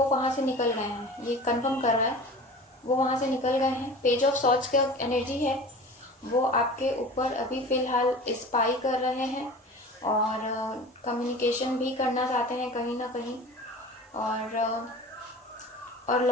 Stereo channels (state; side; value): normal; both; correlation 0.38